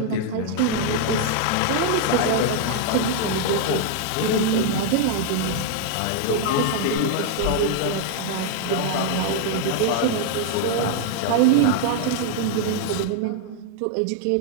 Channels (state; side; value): different; both; correlation 0.00